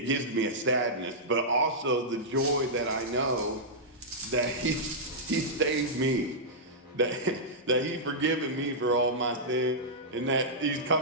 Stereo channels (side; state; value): both; normal; correlation -0.11